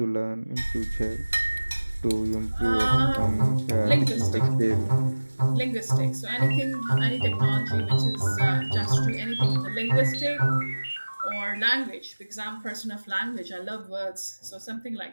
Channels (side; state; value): both; inverted; correlation -1.00